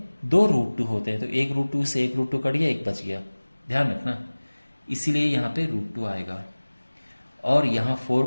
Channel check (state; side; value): inverted; both; correlation -1.00